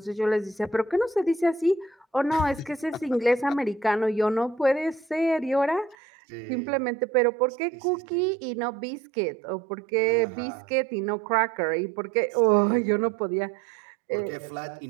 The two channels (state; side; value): drops out; left; at 6.0 s